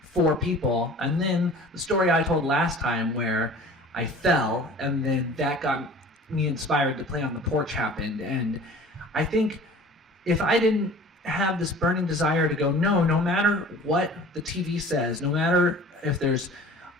for people. And then the story I told last time where I fell, and then that got me inspired to play on the porch happened. And I think if I didn't have this burning desire to go, no matter what the TV says, no matter if there's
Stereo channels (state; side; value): normal; both; correlation 0.45